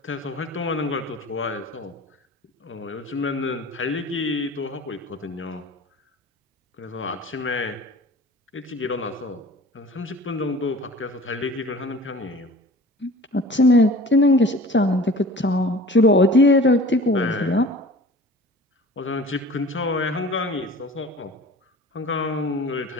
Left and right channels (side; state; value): both; normal; correlation 0.43